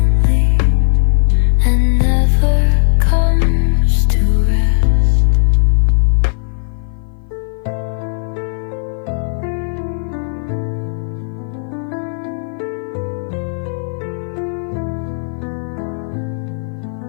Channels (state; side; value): silent; right; 55 dB below the other